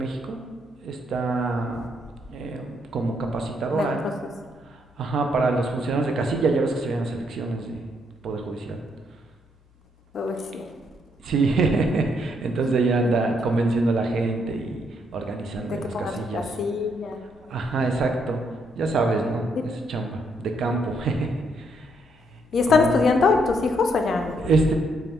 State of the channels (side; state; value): both; normal; correlation 0.74